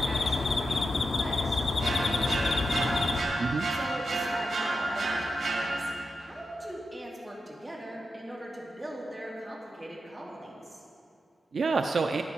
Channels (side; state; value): both; normal; correlation 0.88